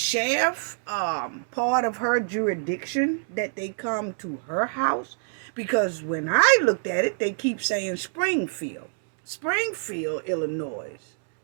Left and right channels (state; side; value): silent; left; digital silence